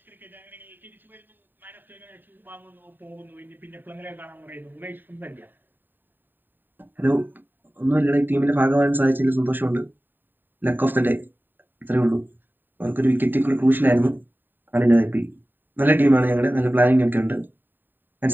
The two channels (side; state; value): left; late; 0.092 ms